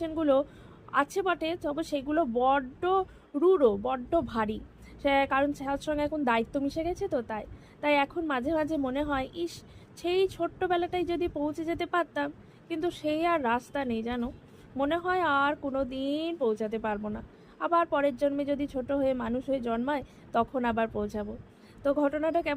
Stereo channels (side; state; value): both; identical; correlation 1.00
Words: আছে বটে, তবে সেগুলো বড্ড রূঢ়, বড্ড ভারী। সে কারণ তার সঙ্গে এখন দায়িত্ব মিশে গেছে, তো তাই তাই এখন মাঝে মাঝে মনে হয়, ইস, সেই ছোট্টবেলাটাই যদি পৌঁছে যেতে পারতাম, কিন্তু সেই আর রাস্তা নেই জানো। মনে হয় আর কোনো দিন পৌঁছাতে পারবো না। আবার পরের জন্মে যদি ছোট হয়ে মানুষ হয়ে জন্মায়, তখন আবার পৌঁছাবো। তো ঘটনাটা